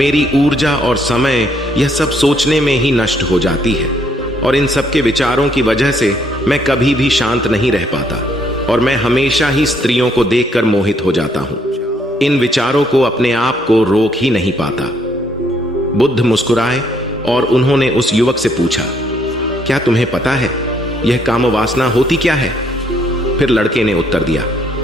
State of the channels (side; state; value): both; normal; correlation 0.69